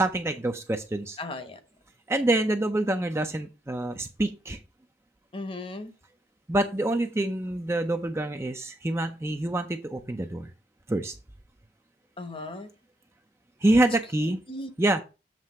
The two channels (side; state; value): both; normal; correlation 0.79